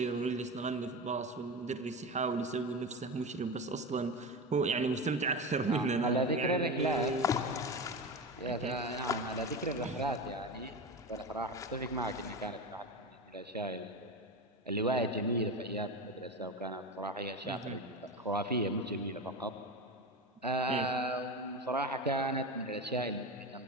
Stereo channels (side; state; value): both; normal; correlation 0.22